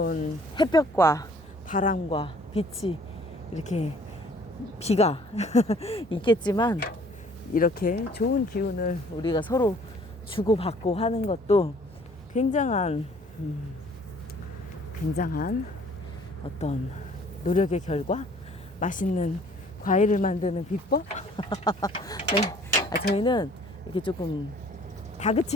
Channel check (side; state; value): both; normal; correlation 0.56